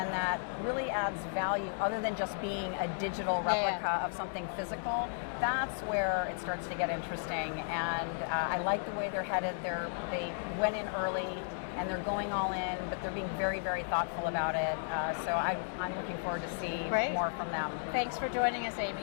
that really adds value other than just being a digital replica of something physical, that's where it starts to get interesting. And I like the way they're headed. They went in early and they're going all in, but they're being very, very thoughtful about it. So I'm looking forward to see more from them. Thanks for joining us, Amy.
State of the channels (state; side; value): silent; right; digital silence